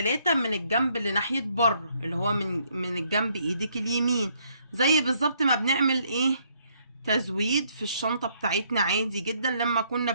من الجنب اللي ناحية بره، اللي هو من الجنب ايدك اليمين، زي بالظبط ما بنعمل ايه؟ تزويد في الشنطة بتاعتنا عادي جدا لما كنا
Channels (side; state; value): both; inverted; correlation -0.69